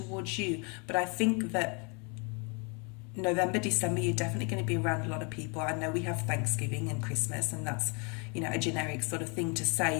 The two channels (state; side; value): quieter; right; 34.2 dB